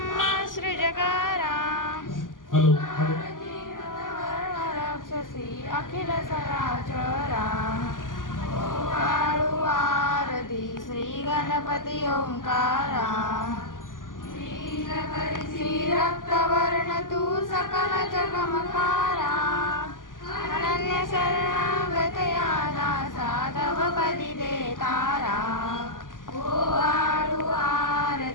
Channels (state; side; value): late; right; 0.89 ms